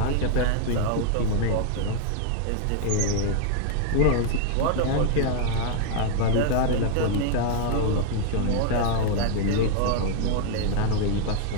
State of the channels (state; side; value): different; both; correlation 0.00